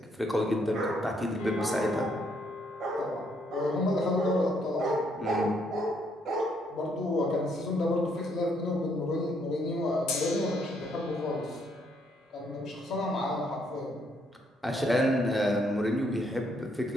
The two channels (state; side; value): normal; both; correlation 0.71